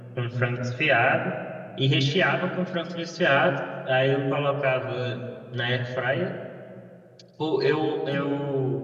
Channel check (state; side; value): identical; both; correlation 1.00